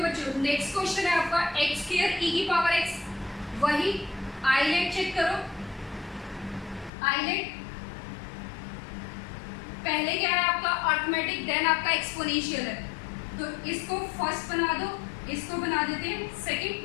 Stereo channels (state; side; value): drops out; right; at 6.9 s